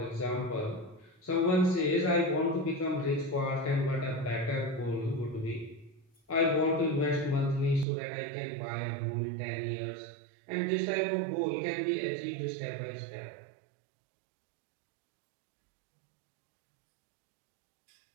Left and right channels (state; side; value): drops out; left; at 7.9 s